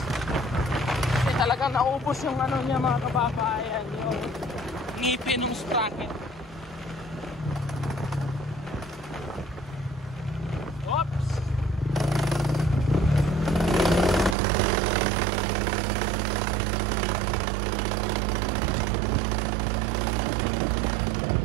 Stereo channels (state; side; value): drops out; left; at 14.4 s